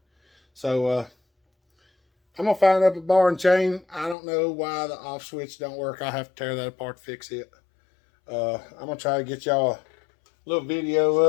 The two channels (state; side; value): drops out; right; at 4.2 s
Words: So, I'm going to find up a bar and chain. I don't know why the off switch don't work. I have to tear that apart to fix it. I'm going to try to get y'all a little video